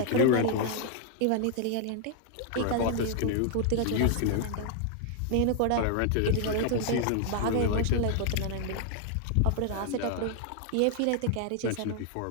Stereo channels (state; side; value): different; both; correlation 0.00